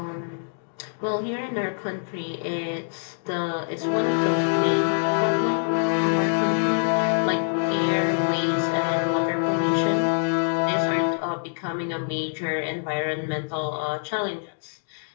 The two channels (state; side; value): silent; right; digital silence